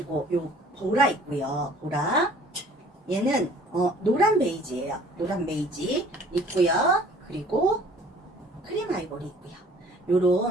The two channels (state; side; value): normal; both; correlation 0.53